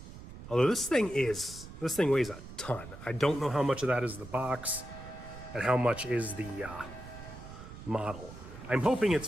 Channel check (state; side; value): noise; right; rumble, 14 dB below the sound